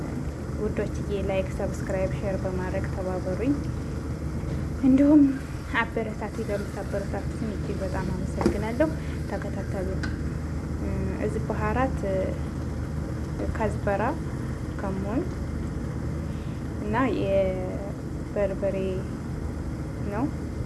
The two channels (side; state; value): both; identical; correlation 1.00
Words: ውዶችዬ ላይክ፣ ሰብስክራይብ፣ ሼር በማድረግ ተባበሩኝ። እንዲሁም አበረታቱ። ለምታበረታቱኝ እጅግ በጣም አመሰግናለሁ። ተከታተሉ። እዚህ ባህራት ከዝበራ ከሞን እና የበርበሬ ነው